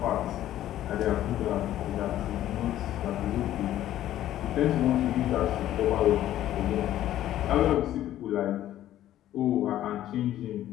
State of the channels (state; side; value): quieter; right; 12.9 dB